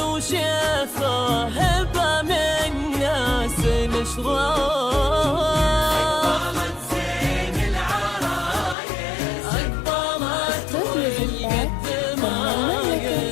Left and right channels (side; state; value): right; drops out; at 8.8 s